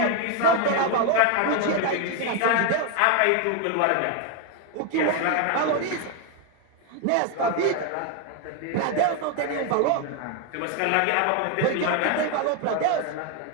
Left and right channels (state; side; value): different; both; correlation 0.01